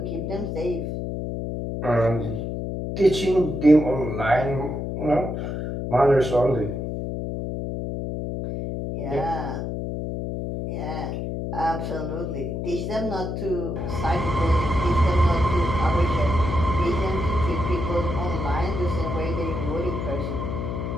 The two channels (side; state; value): left; noise; hum, 4 dB below the sound